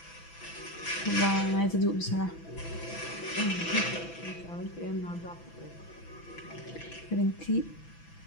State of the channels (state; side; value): late; right; 6.0 ms